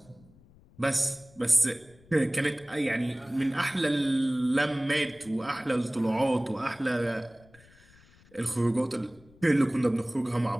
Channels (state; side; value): noise; left; rumble, 27 dB below the sound